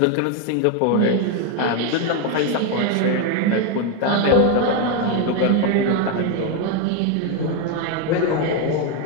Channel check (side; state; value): both; different; correlation 0.01